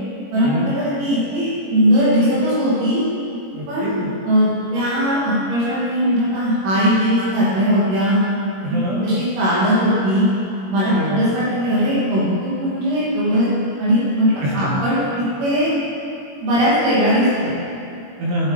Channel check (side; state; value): left; late; 21 ms